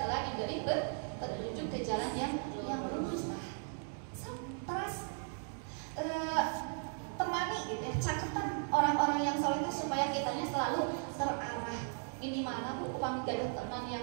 telah diberi petunjuk ke jalan yang lurus. Terus temani gitu ya, caketan orang-orang yang soleh supaya kitanya selalu terarah. Ini mana bu, upami gaduh teman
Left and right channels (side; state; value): left; silent; 53 dB below the other